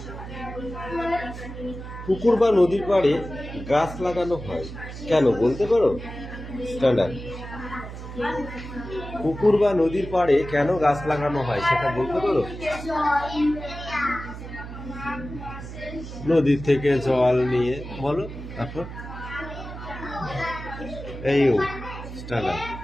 পুকুর বা নদীর পাড়ে গাছ লাগানো হয় কেন বলতে পারো? স্ট্যান্ডার্ড। পুকুর বা নদীর পাড়ে কেন গাছ লাগানো হয় সেটা বলতে পারো? নদীর থেকে জল নিয়ে বলো। তারপর এই স্ট্যান্ডার্ড।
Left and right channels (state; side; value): noise; right; hum, 11 dB below the sound